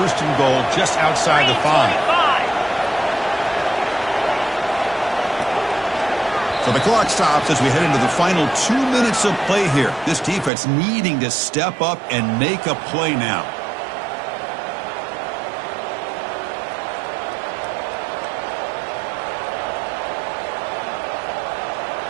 and goal just outside the 5. So the clock stops as we head into the final 2 minutes of play here. This defense needing to step up and make a play now.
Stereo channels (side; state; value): left; drops out; at 10.5 s